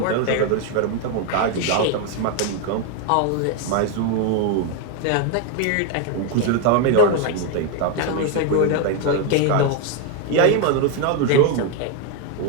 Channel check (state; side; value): different; both; correlation 0.01